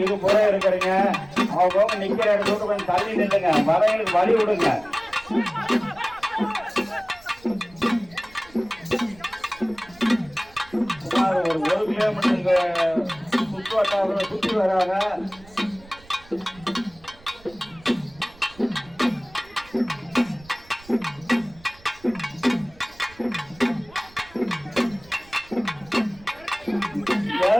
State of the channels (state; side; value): noise; right; rumble, 24 dB below the sound